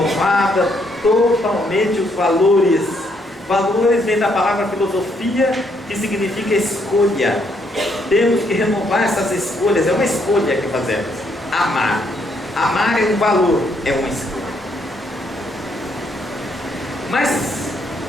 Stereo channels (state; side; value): normal; both; correlation 0.72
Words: totalmente os valores. Valores vem da palavra filosofia, que significa escolha. Temos que renovar essas escolhas. É uma escolha que fazemos. Amar. Amar é um valor, é uma escolha. Mas,